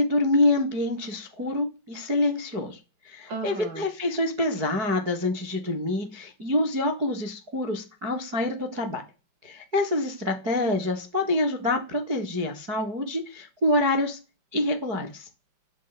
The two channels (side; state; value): left; late; 4.7 ms